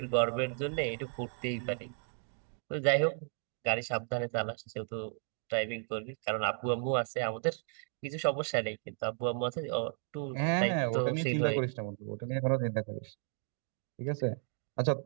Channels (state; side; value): silent; left; 55 dB below the other